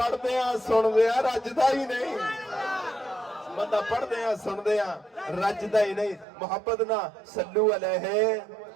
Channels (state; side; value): drops out; left; at 6.2 s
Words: دیاں سن دیاں رجدا ہی نہیں بندہ پڑھ دیاں سن دیاں رجدا ہی نہیں محبت نہ صلو علیہ